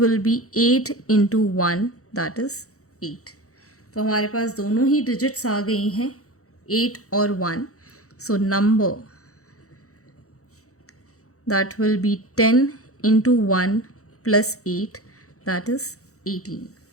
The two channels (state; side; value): late; right; 0.65 ms